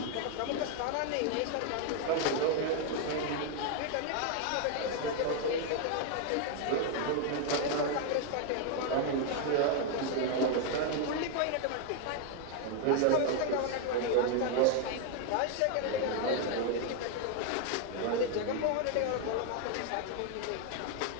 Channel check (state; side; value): different; both; correlation 0.01